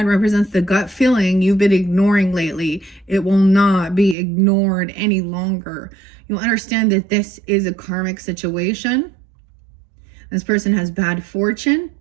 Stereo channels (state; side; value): drops out; left; at 4.2 s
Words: represents the gut feeling you've been ignoring lately. It will not be ignored any longer. You'll understand that this is a karmic situation. This person has bad fortune,